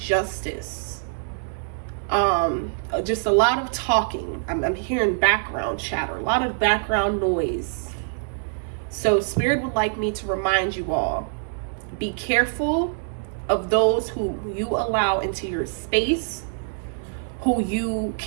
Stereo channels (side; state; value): left; silent; digital silence